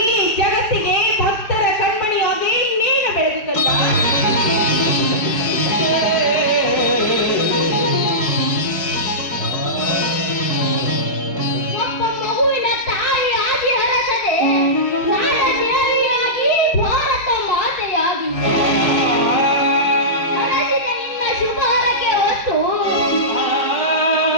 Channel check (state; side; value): late; right; 4.7 ms